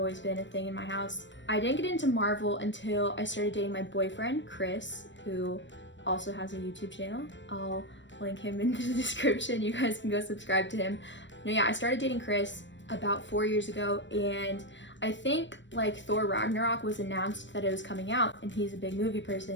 been a thing in my house. I didn't get into Marvel until I started dating my boyfriend, Chris, who also has a YouTube channel. I'll link him in the description. You guys can go subscribe to him. No, yeah, I started dating Chris about 4 years ago, and I think Thor Ragnarok was announced that it was coming out, and he's a big movie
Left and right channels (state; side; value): late; right; 0.53 ms